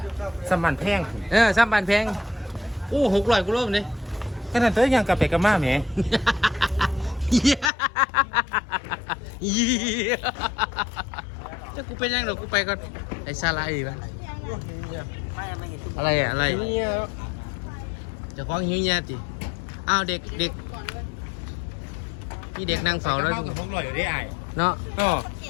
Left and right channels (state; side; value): drops out; right; at 7.7 s